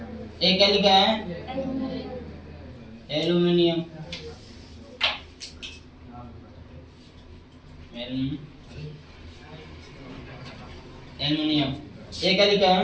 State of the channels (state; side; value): identical; both; correlation 1.00